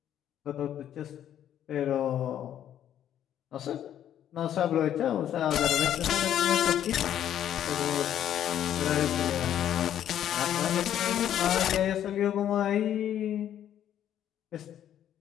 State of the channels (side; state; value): right; quieter; 10.6 dB